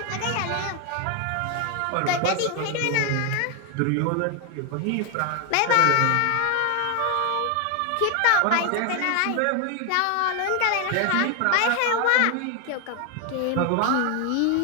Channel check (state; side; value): different; both; correlation 0.01